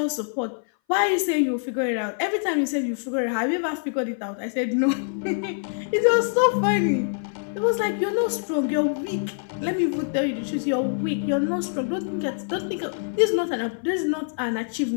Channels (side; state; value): right; silent; 59 dB below the other